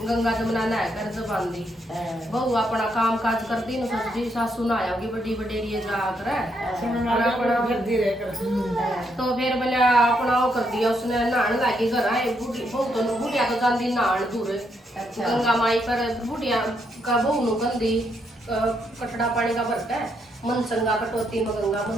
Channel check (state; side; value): normal; both; correlation 0.77